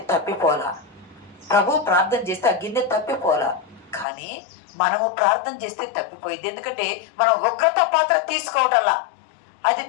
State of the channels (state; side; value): drops out; right; at 4.0 s